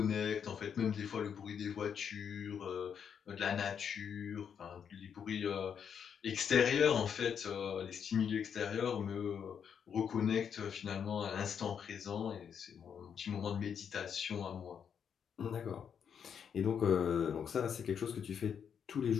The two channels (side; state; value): right; quieter; 7.6 dB